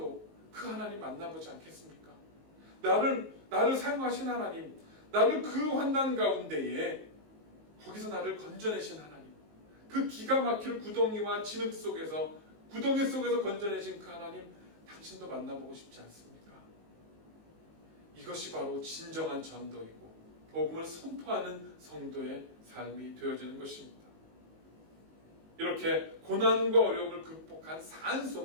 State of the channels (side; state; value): left; late; 19 ms